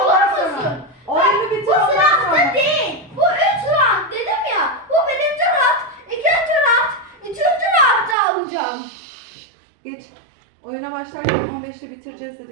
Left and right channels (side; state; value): left; drops out; at 8.2 s